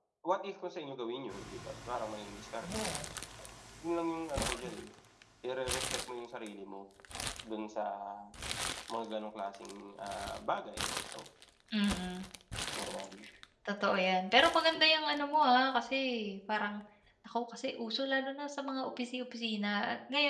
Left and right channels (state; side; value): identical; both; correlation 1.00